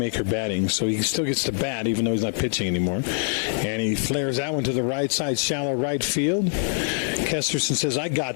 batting, so he still gets to bat even though he's not pitching anymore. And he flares that one to the right side, shallow right field. Kesterson says, I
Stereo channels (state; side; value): silent; right; digital silence